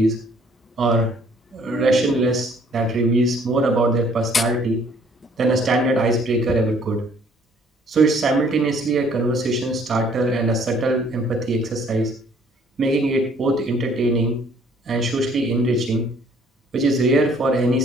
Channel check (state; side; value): normal; both; correlation 0.60